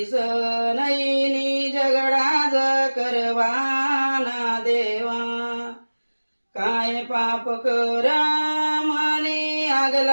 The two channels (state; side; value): inverted; both; correlation -1.00